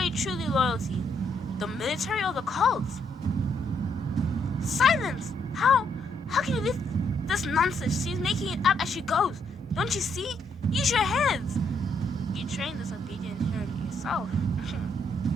truly loyal to? The military or the cults? Silence! How can you leave this nonsense? She's making it up as she goes. Don't you see? Use your heads. You trained this obedient inheritor yourself.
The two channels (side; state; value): both; normal; correlation 0.74